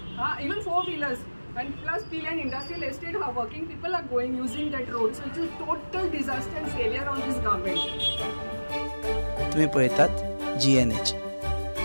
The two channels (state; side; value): inverted; both; correlation -1.00